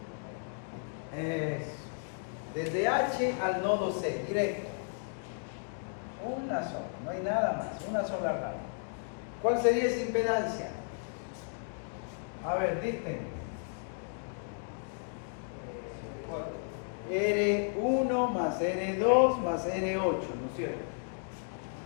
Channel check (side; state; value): right; silent; digital silence